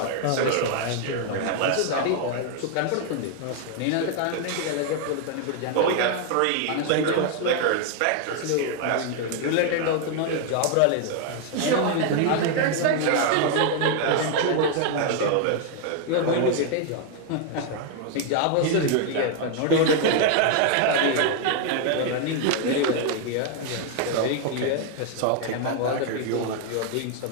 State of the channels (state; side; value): different; both; correlation 0.00